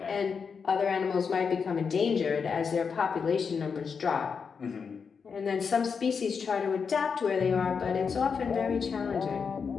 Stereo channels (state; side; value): quieter; right; 5.9 dB